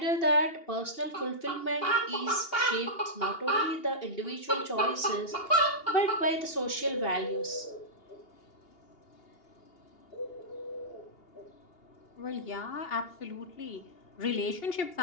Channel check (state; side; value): late; right; 2.8 ms